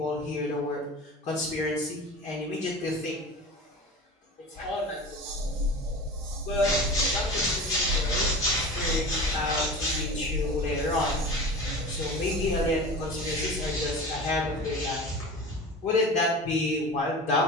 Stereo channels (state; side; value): normal; both; correlation 0.34